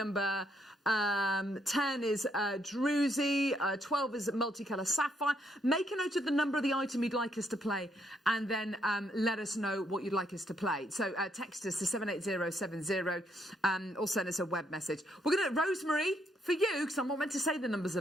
10 is Druzy, 12 is multicolour sapphire. Make a note of the number of the item you'd like us to play, and then let us know what you'd like us to play. So text us to 78070 or send us a web message. We're going to, Rosemary, for you, because I'm not meant to say the numbers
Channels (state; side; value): normal; both; correlation 0.74